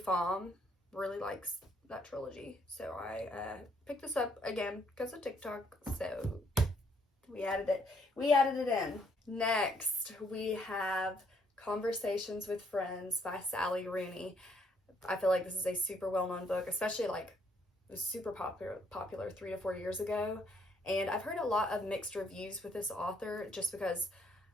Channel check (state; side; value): normal; both; correlation 0.69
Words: really likes that trilogy, so I picked this up again because of TikTok, so we added it in. Next we have Conversations with Friends by Sally Rooney. I feel like this is a super well-known book, especially like it was super popular 3 to 4 years ago, and I've heard a lot of mixed reviews with this author just because